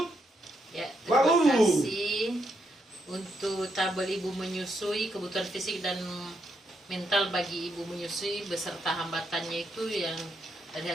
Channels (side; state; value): both; normal; correlation 0.79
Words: Ya, terima kasih untuk tabel ibu menyusui, kebutuhan fisik dan mental bagi ibu menyusui beserta hambatannya itu yang dari